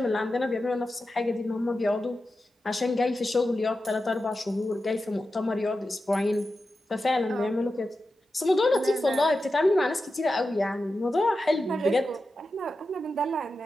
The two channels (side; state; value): both; normal; correlation 0.91